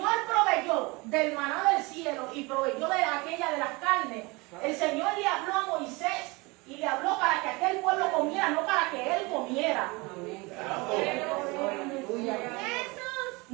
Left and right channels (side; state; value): left; quieter; 25.4 dB